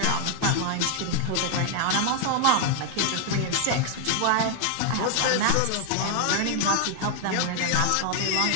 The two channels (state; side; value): different; both; correlation 0.00